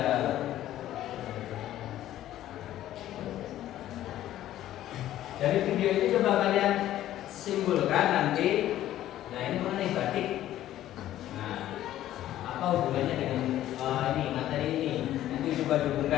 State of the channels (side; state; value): right; quieter; 13.1 dB